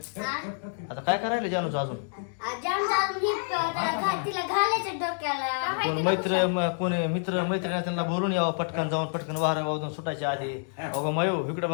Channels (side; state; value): right; silent; digital silence